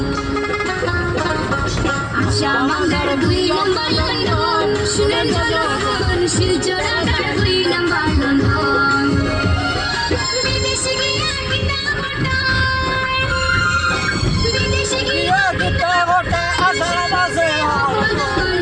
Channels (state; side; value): identical; both; correlation 1.00